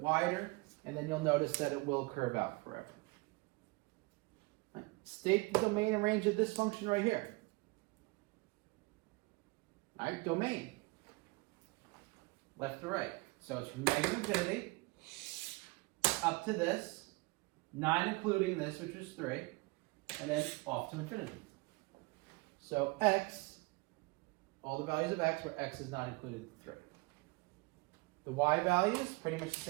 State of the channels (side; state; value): left; quieter; 25.5 dB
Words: and then you'll notice that it will curve out forever. Right. State the domain and range of this function right here. All right, domain. Left to right. So it's from negative infinity up to this, 9 including this, which is 3, and then off to infinity. So x, all the values of x where x is not included 3. The y values, pretty much the